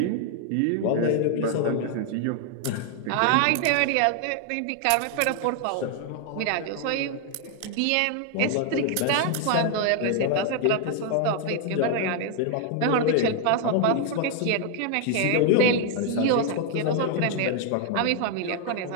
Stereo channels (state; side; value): different; both; correlation 0.00